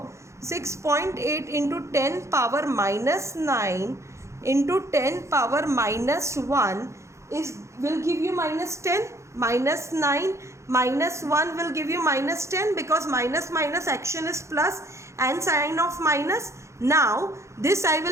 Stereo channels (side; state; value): left; late; 0.14 ms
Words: 6.8 into 10 power minus 9 into 10 power minus 1 will give you minus 10. Minus 9 minus 1 will give you minus 10, because minus action is plus and sign of minus. Now this I